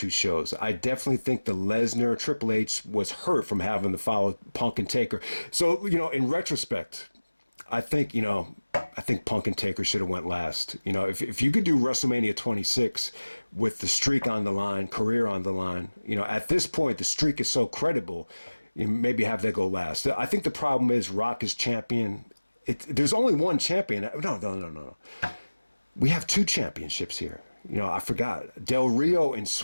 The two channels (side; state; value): both; inverted; correlation -1.00